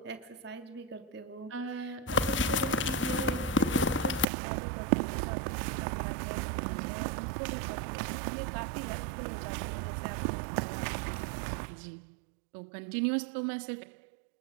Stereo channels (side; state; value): left; drops out; at 4.2 s